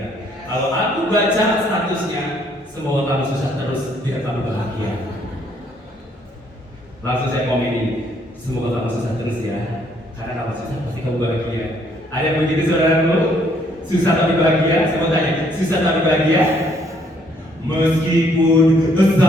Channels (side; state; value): both; normal; correlation 0.67